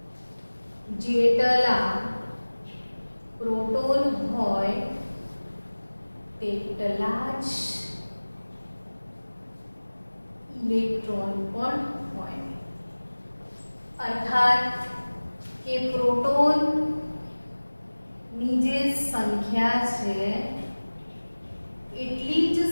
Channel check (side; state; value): both; inverted; correlation -1.00